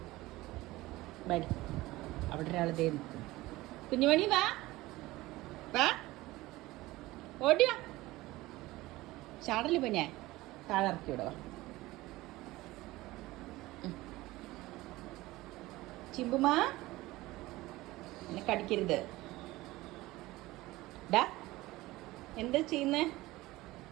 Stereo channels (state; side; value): quieter; left; 18.8 dB